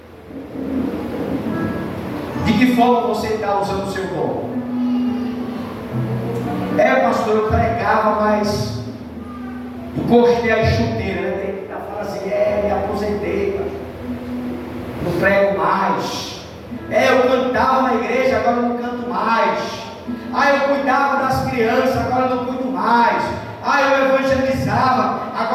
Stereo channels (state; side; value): identical; both; correlation 1.00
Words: De que forma você está usando o seu dom? Pastor, eu pregava, mas encostei a chuteira, né? Tem que fazer, me aposentei, pastor. Não prego mais. Eu cantava na igreja, agora eu não canto mais. Eu cuidava das crianças, agora eu não cuido mais. Eu evangelizava,